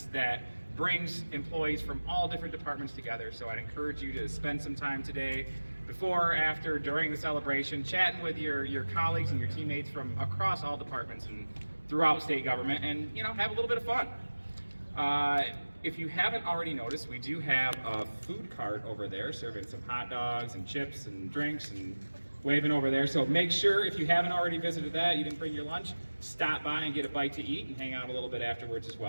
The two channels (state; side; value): inverted; both; correlation -1.00